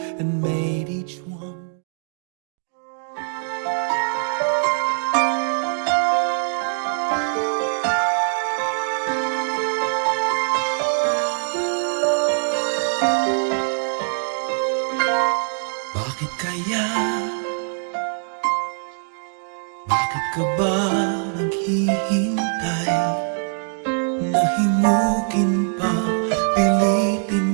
and made each one. Bakit kaya? Bakit ka ba naghihintay? Nahimukin pa,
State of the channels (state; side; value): silent; left; digital silence